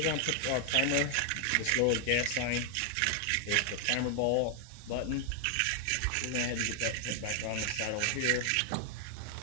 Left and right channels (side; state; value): both; different; correlation 0.00